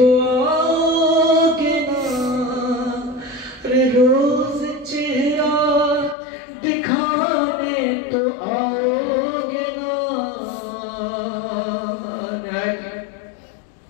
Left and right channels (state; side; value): drops out; right; at 6.2 s